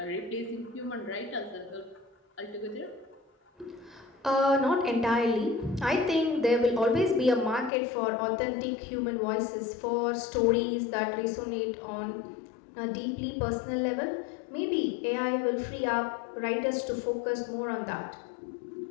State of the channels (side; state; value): right; drops out; at 7.7 s